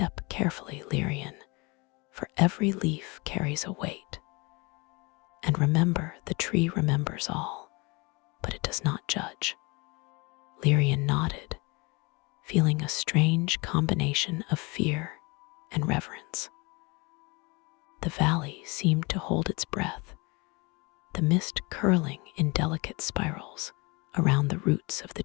carefully, Lyrian, for every leaf carries a weight. And remember, the tree remembers all, but it does not judge. Lyrian nodded, feeling a strange combination of fear and reverence. The valley seemed to hold its breath, the mist curling in delicate spirals around the roots of the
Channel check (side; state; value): right; quieter; 27.2 dB